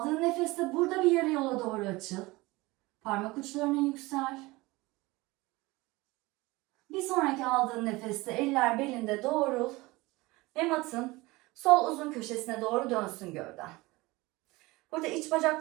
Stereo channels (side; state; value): left; quieter; 21.6 dB